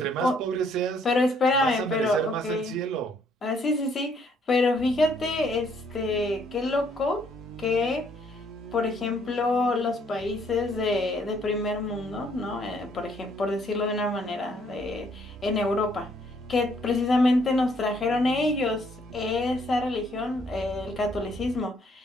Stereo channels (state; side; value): normal; both; correlation 0.67